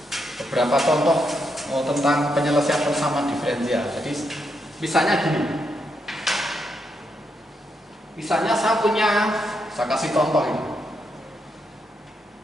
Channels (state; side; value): normal; both; correlation 0.80